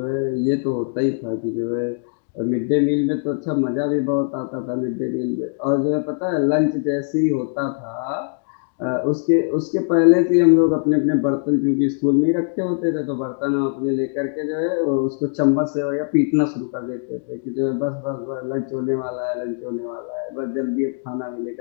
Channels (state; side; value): silent; right; digital silence